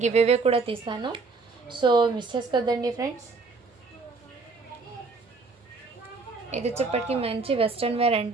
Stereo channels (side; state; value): left; quieter; 4.1 dB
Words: గివ్ అవే కూడా తీస్తాను సో మిస్ చేసుకోవద్దండి ఫ్రెండ్స్ ఇది వచ్చేప్పటికి మంచి వెస్ట్రన్ వేర్